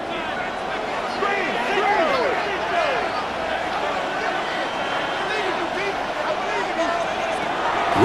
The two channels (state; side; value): identical; both; correlation 1.00